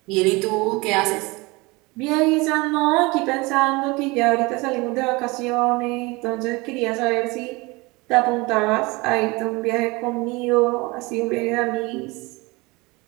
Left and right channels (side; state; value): left; quieter; 24.4 dB